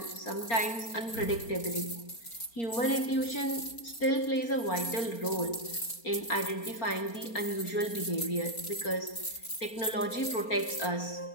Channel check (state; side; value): late; right; 4.3 ms